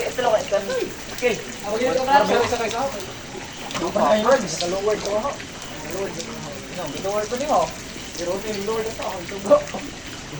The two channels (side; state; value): both; identical; correlation 1.00